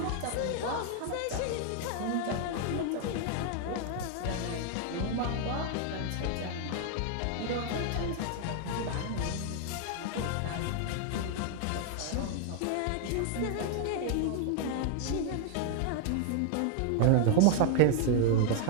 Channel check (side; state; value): both; different; correlation 0.00